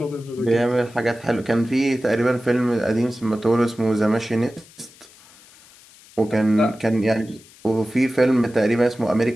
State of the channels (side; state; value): left; noise; hiss, 25 dB below the sound